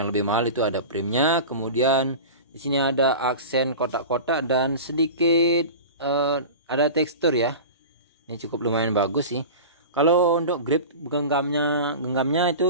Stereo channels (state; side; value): inverted; both; correlation -0.32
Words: lebih mahal itu ada frame-nya. Kemudian di sini ada aksen kotak-kotak dan sedikit ada tekstur ya. Ini cukup lumayan bagus sih. Kalau untuk grip genggamnya